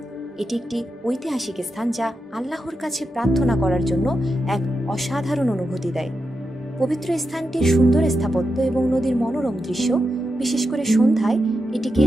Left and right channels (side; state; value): both; normal; correlation 0.88